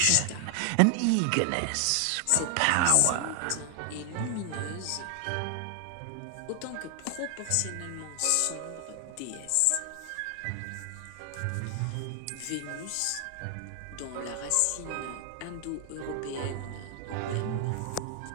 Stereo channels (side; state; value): both; different; correlation 0.00